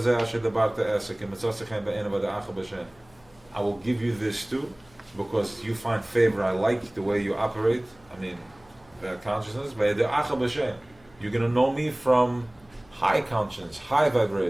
zeh asher dabarte esek, imitzosechem be'ena v'da'acha b'shem. I will give you this too, because you find favor. I like the way you operate. I mean, that consciousness. V'da'acha b'shem. You're going to know me from high conscience, high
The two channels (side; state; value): left; noise; hum, 28 dB below the sound